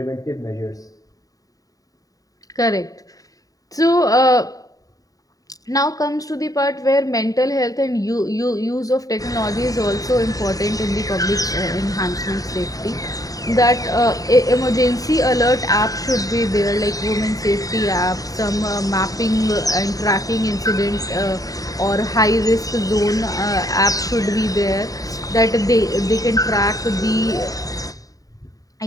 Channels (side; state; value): right; late; 0.17 ms